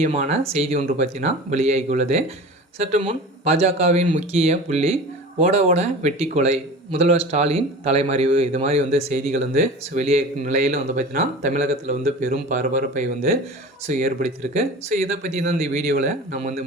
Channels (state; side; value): normal; both; correlation 0.36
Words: செய்தி ஒன்று பற்றினா வெளியாகியுள்ளது. சற்று முன் பாஜகவின் முக்கிய புள்ளி ஓட ஓட வெட்டி கொலை, முதல்வர் ஸ்டாலின் தலைமறைவு, இது மாதிரி செய்திகள் வெளியாகும் நிலையில் பார்த்தீங்கன்னா தமிழகத்தில் பெரும் பரபரப்பை ஏற்படுத்தியிருக்கு. இதை பற்றி தான் இந்த வீடியோவில் நம்ம